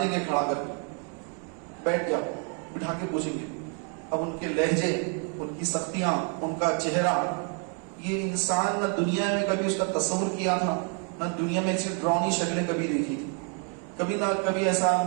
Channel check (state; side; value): quieter; left; 39.6 dB